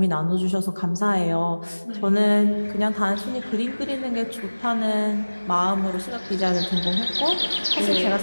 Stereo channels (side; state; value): both; inverted; correlation -1.00